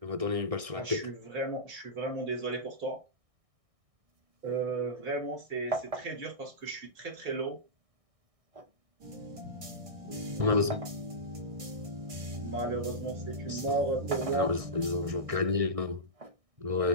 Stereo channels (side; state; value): left; late; 1.6 ms